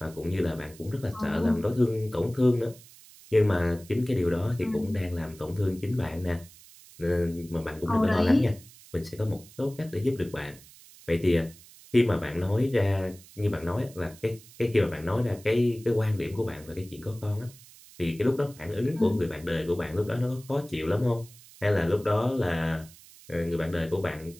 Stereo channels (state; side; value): noise; right; hiss, 22 dB below the sound